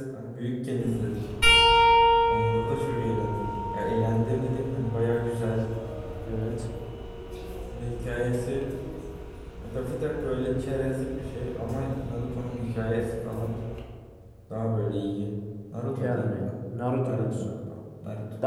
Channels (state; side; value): identical; both; correlation 1.00